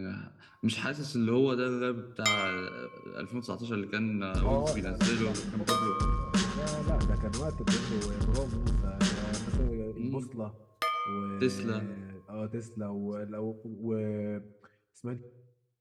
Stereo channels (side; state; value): both; identical; correlation 1.00